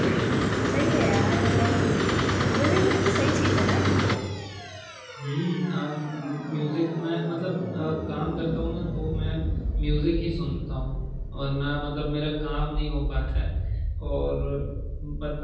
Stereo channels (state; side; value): identical; both; correlation 1.00